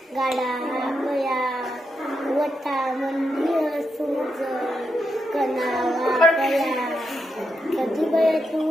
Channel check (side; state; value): both; normal; correlation 0.84